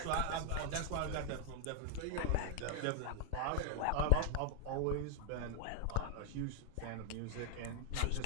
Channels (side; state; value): both; different; correlation 0.00